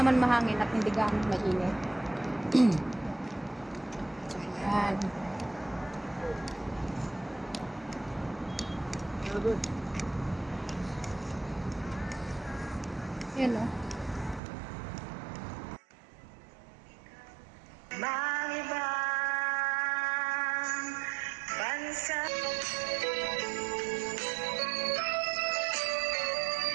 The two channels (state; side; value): drops out; left; at 14.4 s